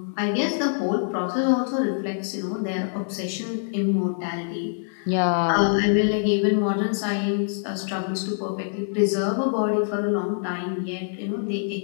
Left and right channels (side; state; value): right; silent; digital silence